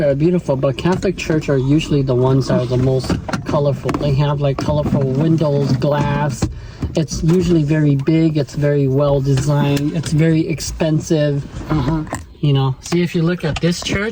are beautiful, but Catholic Church are usually the ones that are the most colorful. They have like colorful windows, glass. It's usually very big. It's very well designed. It's very expensive. You know, see, if you look at this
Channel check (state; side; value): identical; both; correlation 1.00